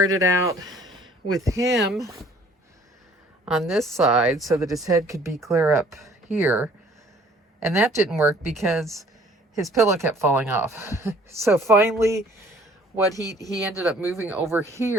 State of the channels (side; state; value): both; normal; correlation 0.56